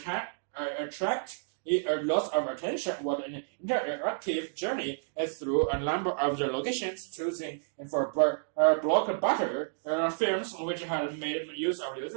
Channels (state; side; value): silent; left; digital silence